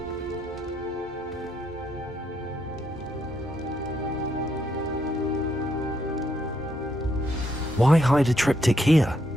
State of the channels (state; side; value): normal; both; correlation 0.76